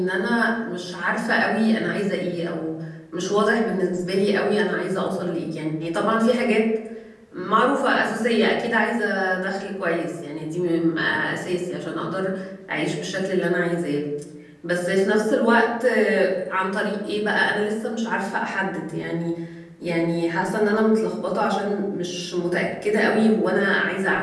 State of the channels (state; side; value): identical; both; correlation 1.00